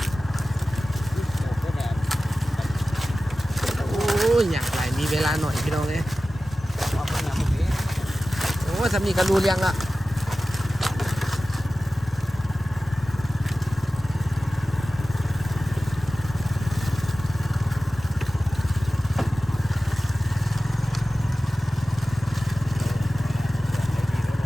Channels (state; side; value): normal; both; correlation 0.95